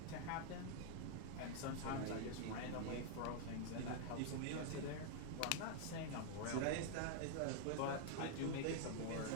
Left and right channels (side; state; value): both; different; correlation 0.00